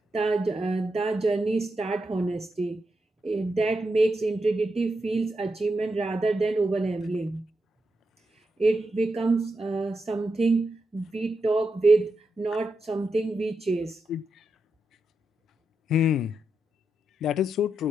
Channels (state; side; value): normal; both; correlation 0.86